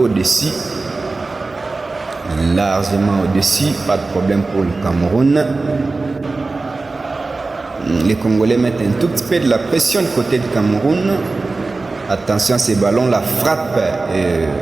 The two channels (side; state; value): left; quieter; 3.6 dB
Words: Largement au-dessus, pas de problème pour le Cameroun. Les Congolais mettent un tout petit peu de la pression du côté du Cameroun. Attention à ces ballons, la frappe.